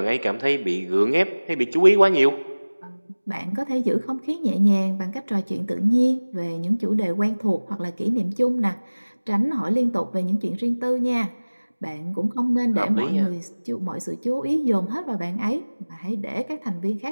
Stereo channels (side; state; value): both; inverted; correlation -1.00